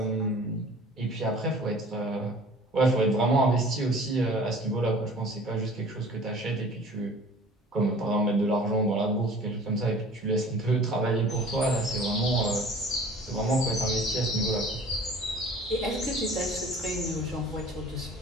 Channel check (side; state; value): both; normal; correlation 0.47